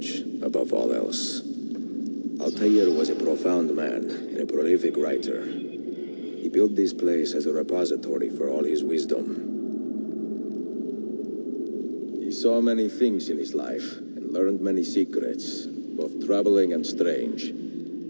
above all else. Altaïr was a profound man and a prolific writer. He built this place as a repository for all his wisdom. He saw many things in his life and learned many secrets, both troubling and strange.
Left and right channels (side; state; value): both; inverted; correlation -1.00